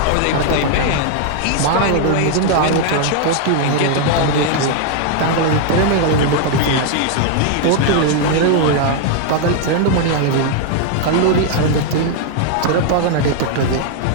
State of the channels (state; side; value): different; both; correlation 0.00